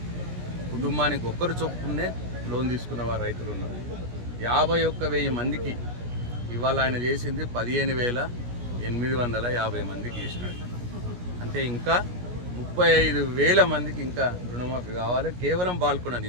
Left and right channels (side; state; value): left; late; 17 ms